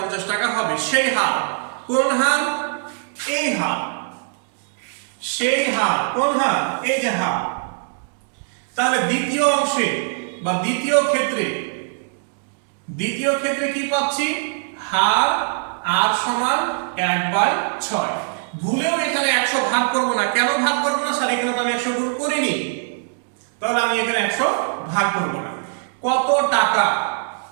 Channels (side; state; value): left; silent; digital silence